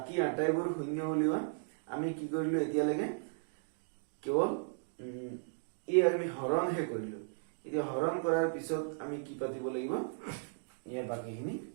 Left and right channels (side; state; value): left; silent; digital silence